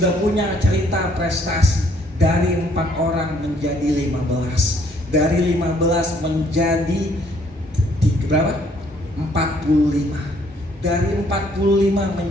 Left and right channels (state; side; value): normal; both; correlation 0.64